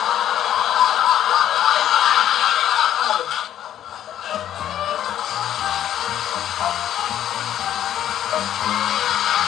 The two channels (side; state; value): right; quieter; 11.1 dB